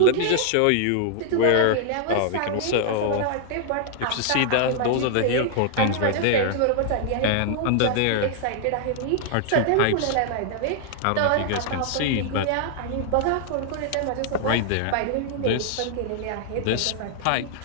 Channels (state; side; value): different; both; correlation -0.01